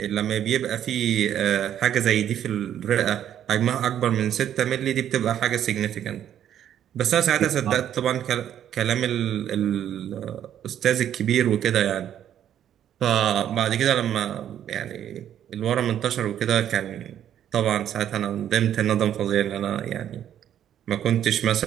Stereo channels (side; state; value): left; quieter; 10.3 dB